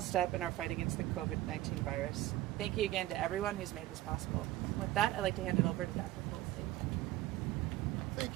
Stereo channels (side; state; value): left; quieter; 15.5 dB